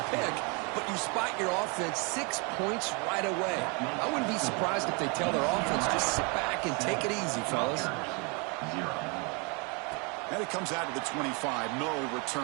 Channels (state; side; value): quieter; left; 32.3 dB